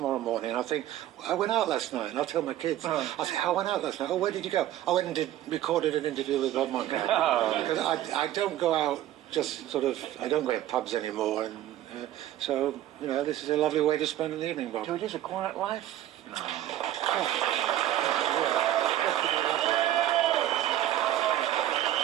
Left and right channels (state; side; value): quieter; left; 13.1 dB